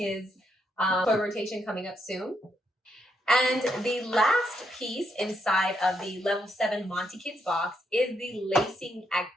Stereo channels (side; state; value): both; normal; correlation 0.78